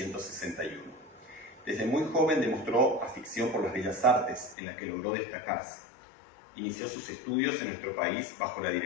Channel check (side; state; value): right; drops out; at 4.5 s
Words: Desde muy joven demostró afición por las bellas artes, en las que logró destacarse. Inició sus estudios en nuestro país bajo la